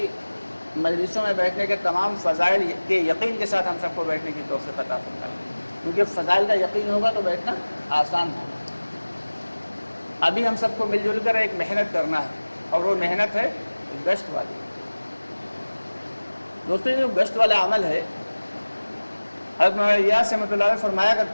مجلسوں میں بیٹھنے کے تمام فضائل کے یقین کے ساتھ ہم سب کو بیٹھنے کی توفیق عطا فرمائے، کیونکہ فضائل کا یقین ہوگا تو بیٹھنا آسان ہوگا. ابھی ہم سب کو مل جل کر ایک محنت کرنا ہے، اور وہ محنت ہے گشت والی. دوستوں، یہ جو گشت والا عمل ہے، حضرت مولانا الیاس رحمۃ اللہ علیہ فرمایا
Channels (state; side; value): inverted; both; correlation -1.00